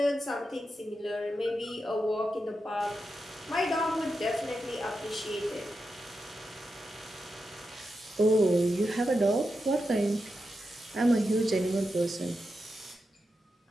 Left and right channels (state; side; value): normal; both; correlation 0.88